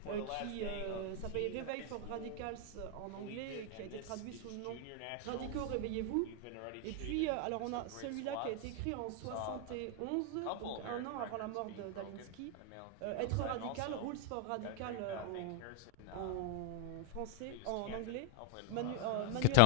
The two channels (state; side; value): different; both; correlation 0.00